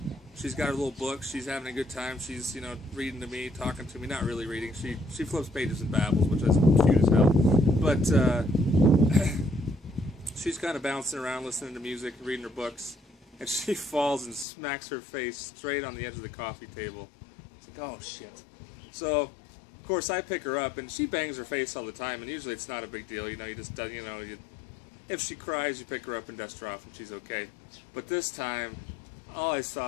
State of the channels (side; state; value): right; drops out; at 14.5 s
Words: She's got her little book. She's having a good time. She's, you know, reading to me, talking to me. Not really reading. She flips pages and babbles, which is cute as hell. But she's kind of bouncing around, listening to music, reading her books, and she falls and smacks her face straight on the edge of the coffee table. It's like, oh shit. So, of course, I pick her up, and she bangs her face all the time, and usually it's not a big deal. You know, you just, you know, if she cries, you pick her up and dust her off, and she's okay. But this time, all I